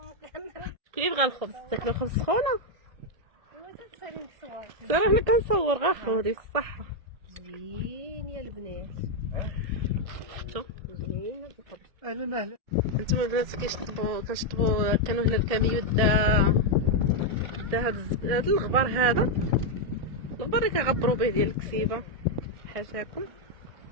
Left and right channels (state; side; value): late; left; 1.7 ms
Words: شكون يبغى الخبز؟ تاكلو الخبز سخونة؟ صراحة حنا كنصور غا خودي الصحة. زوين يا البنات. شوف زوين القبر. انا مالي. نتوما البنات كنشطبوا كانوا هنا الكاميو دا هاد الغبار هذا، الغبار اللي كنغبروا به ديال الكسيبه حاشاكم